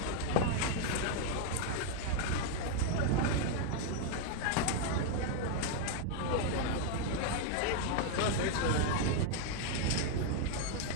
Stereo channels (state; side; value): different; both; correlation 0.01